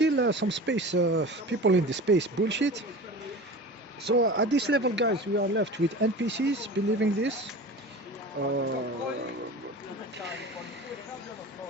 some space, people in the space bullshit. So, at this level, guys, we are left with NPCs believing this. Uh,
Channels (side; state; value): both; normal; correlation 0.35